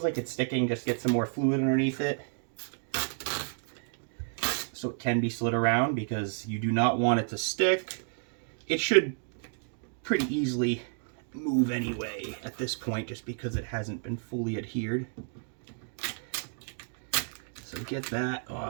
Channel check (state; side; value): silent; left; 57 dB below the other